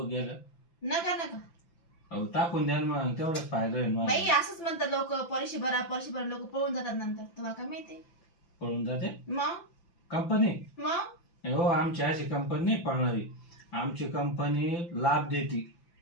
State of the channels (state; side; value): late; right; 5.8 ms